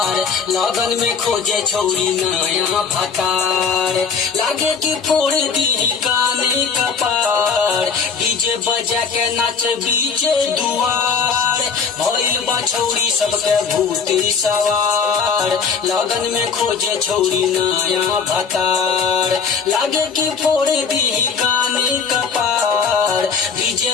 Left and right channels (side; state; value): right; quieter; 5.8 dB